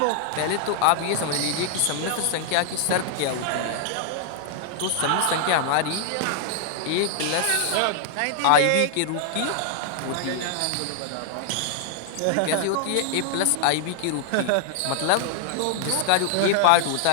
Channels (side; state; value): both; different; correlation 0.00